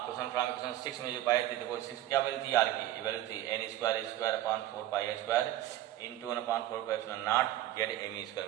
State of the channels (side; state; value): left; quieter; 13.8 dB